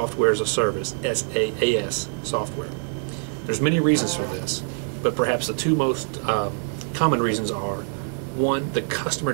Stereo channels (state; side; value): silent; left; 55 dB below the other